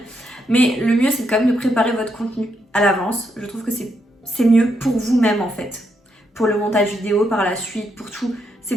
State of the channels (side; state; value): both; normal; correlation 0.79